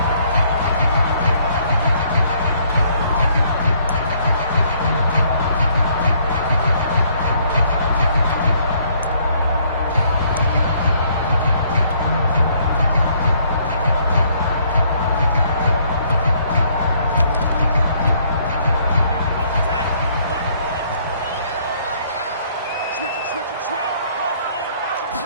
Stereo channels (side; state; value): both; inverted; correlation -0.65